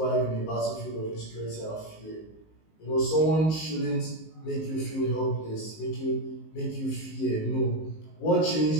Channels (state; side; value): late; right; 19 ms